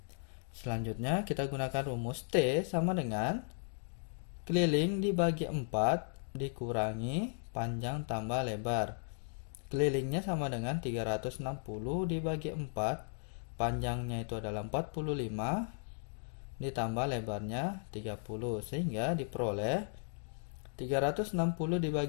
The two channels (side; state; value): right; silent; digital silence